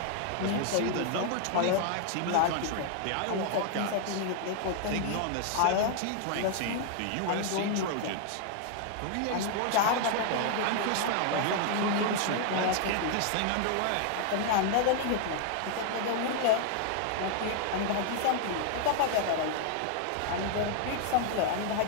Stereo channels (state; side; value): different; both; correlation 0.00